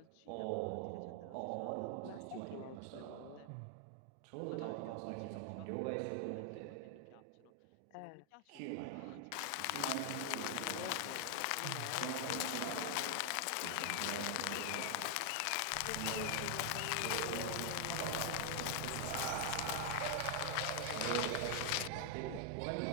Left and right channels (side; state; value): both; different; correlation 0.00